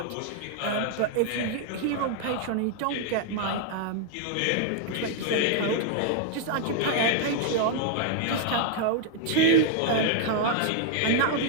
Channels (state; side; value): different; both; correlation 0.00